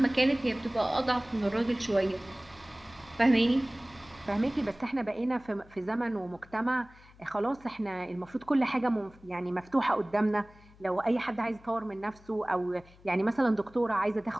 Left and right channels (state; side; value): noise; left; hum, 25 dB below the sound